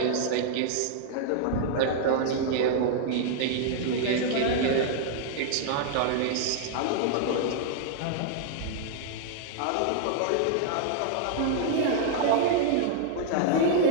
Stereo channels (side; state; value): both; different; correlation -0.01